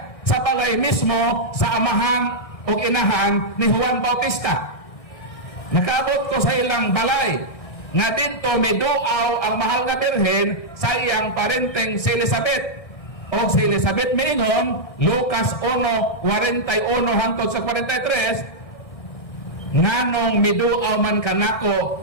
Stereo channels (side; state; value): right; late; 1.6 ms